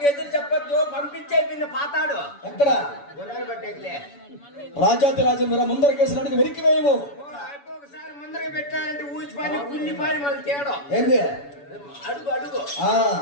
ఎదురు చెప్పొద్దు, పంపించే పిన్న పాతాడు ఎక్కడ గుర్రాలు పట్టేదిలే. రాజాతి రాజు ముందర కేసులు వెరికి వేయము. ఒకసారి ముందర పెట్టాలంటే ఊచిపోయి కుళ్ళిపోయి మళ్ళీ తేడం ఏంది అడుగు అడుగు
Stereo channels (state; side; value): late; right; 7.0 ms